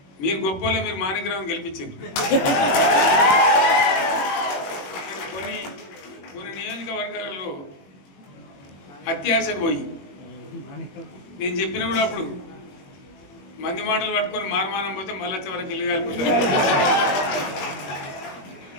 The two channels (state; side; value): late; right; 21 ms